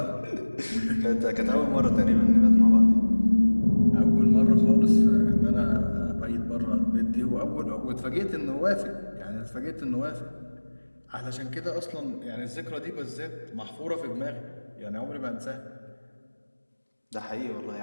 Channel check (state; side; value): inverted; both; correlation -1.00